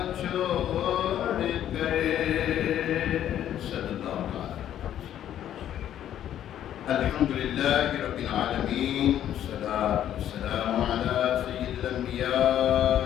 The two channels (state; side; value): quieter; right; 11.0 dB